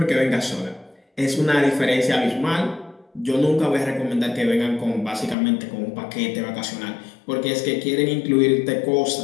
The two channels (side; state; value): right; drops out; at 5.4 s